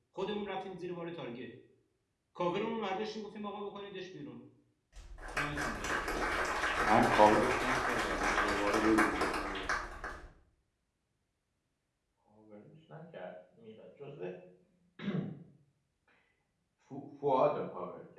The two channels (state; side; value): identical; both; correlation 1.00